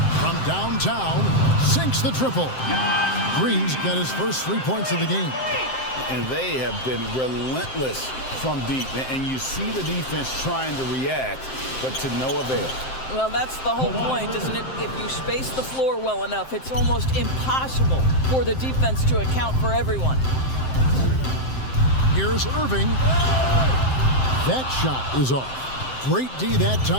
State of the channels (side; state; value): right; late; 7.7 ms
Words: From downtown, sinks the triple. Green's got his first 3 points of the game. And they have been relentless from deep. And you see the defense trying to react, but to no avail. Well, that's the whole point, isn't it? If you space the floor well enough, it's almost impossible for the defense to account for everyone. Here's Irving. That shot is off. Great D that